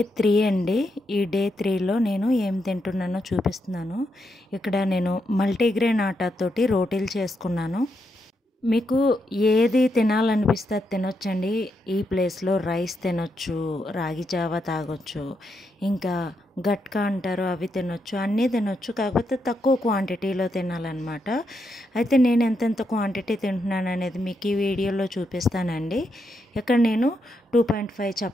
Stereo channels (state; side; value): normal; both; correlation 0.82